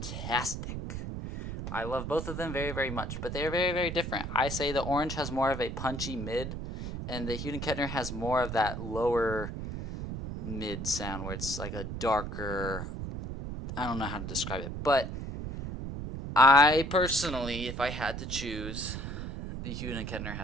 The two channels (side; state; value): right; noise; rumble, 6 dB below the sound